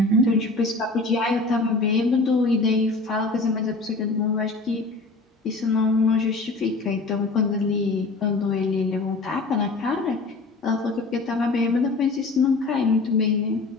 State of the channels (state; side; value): quieter; right; 3.4 dB